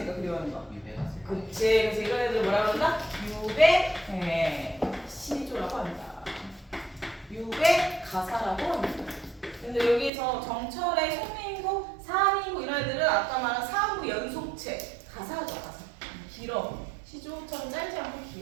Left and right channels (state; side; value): drops out; left; at 10.1 s